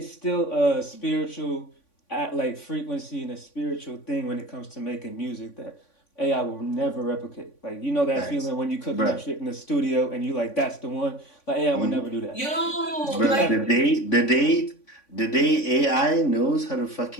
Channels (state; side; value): late; right; 3.5 ms